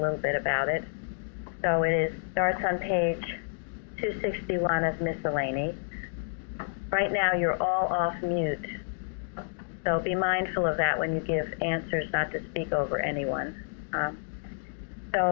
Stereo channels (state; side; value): silent; right; digital silence